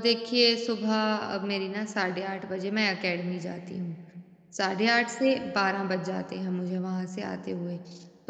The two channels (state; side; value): identical; both; correlation 1.00